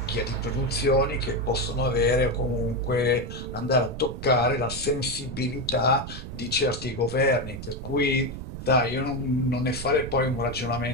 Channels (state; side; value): noise; right; rumble, 9 dB below the sound